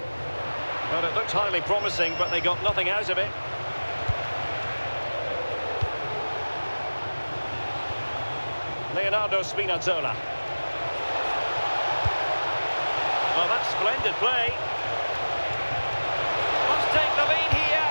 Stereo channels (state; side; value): inverted; both; correlation -1.00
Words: Well, it looked highly promising, but they got nothing out of it. Leonardo Spinazzola. Well, that's splendid play. Must take the lead